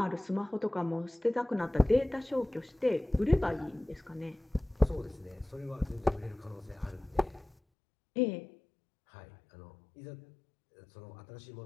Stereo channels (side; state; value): right; drops out; at 7.6 s